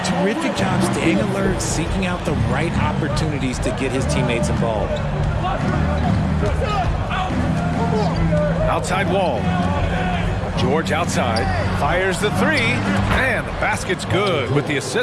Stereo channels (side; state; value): both; identical; correlation 1.00